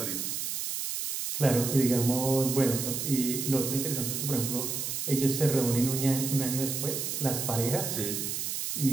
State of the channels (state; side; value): noise; right; hiss, 3 dB below the sound